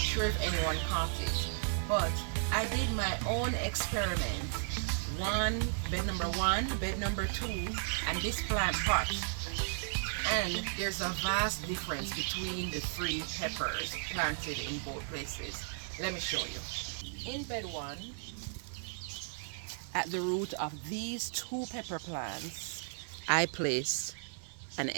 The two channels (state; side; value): silent; left; digital silence